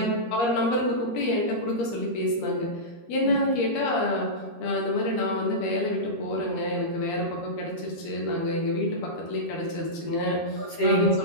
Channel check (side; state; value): right; late; 13 ms